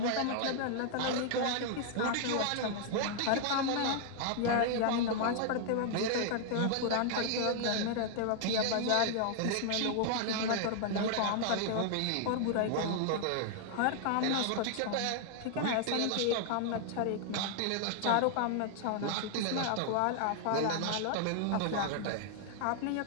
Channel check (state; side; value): different; both; correlation 0.00